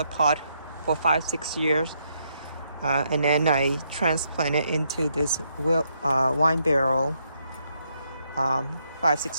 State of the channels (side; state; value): both; inverted; correlation -0.76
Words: pot for 5-6 years, and then I transplanted into this wine barrel.